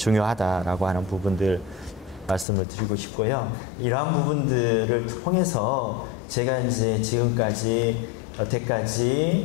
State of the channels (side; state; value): right; drops out; at 2.5 s